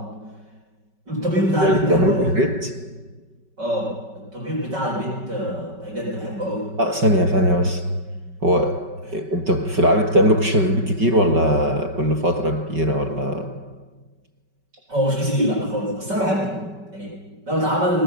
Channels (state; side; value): late; left; 5.3 ms